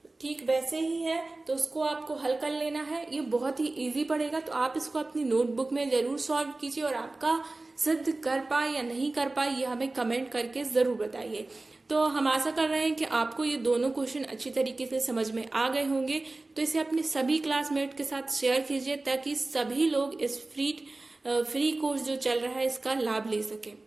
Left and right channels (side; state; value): left; quieter; 3.1 dB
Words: ठीक वैसे ही है, तो उसको आपको हल कर लेना है। ये बहुत ही इजी पड़ेगा, तो आप इसको अपनी नोटबुक में जरूर सॉल्व कीजिए और आपका सिद्ध कर पाए या नहीं कर पाए ये हमें कमेंट करके जरूर बताइए। तो हम आशा कर रहे हैं कि आपको ये दोनों क्वेश्चन अच्छी तरीके से समझ में आ गए होंगे। तो इसे अपने सभी क्लासमेट के साथ शेयर कीजिए ताकि सभी लोग इस फ्री कोर्स जो चल रहा है इसका लाभ ले